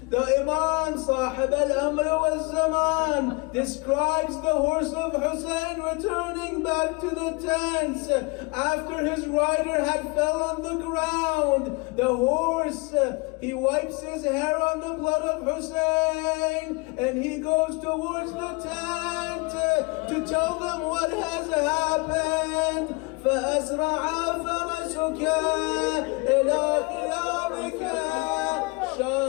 The Imam, Sahib al-Amr wal-Zaman, describes the horse of Hussain returning back to the tents after his rider had fell on the ground. The horse, he wipes his hair on the blood of Hussain, and he goes towards the tent to tell them what has happened. فأسرع فرسك إلى خيامك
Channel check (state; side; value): quieter; right; 28.2 dB